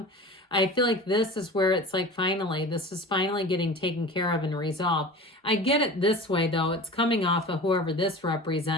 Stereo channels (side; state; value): both; normal; correlation 0.35